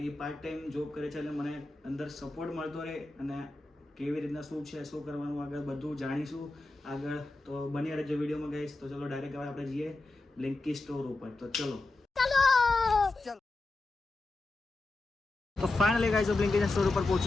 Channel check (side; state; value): right; quieter; 3.1 dB